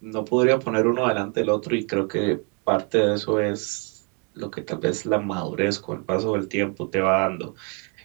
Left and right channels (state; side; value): quieter; left; 36.9 dB